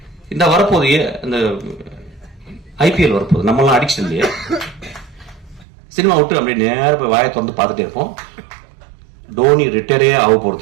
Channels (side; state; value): left; drops out; at 5.7 s